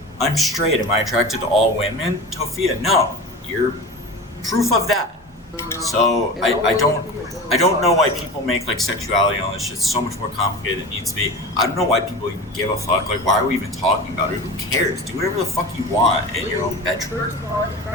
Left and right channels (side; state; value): both; normal; correlation 0.31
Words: I'm straight. Am I attracted to all women? Tophia, no. You're proof of that. So I don't know why people make like sexuality and all this shit so much more complicated than it needs to be. I don't know why people even give a fuck. Like, why are we even talking about it? Who cares? Do whatever the fuck you want in your own bedroom. I